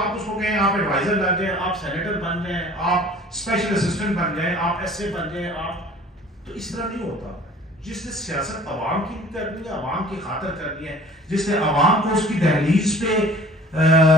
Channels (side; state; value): both; normal; correlation 0.49